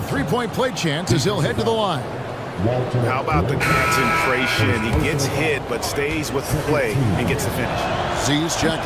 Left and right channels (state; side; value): identical; both; correlation 1.00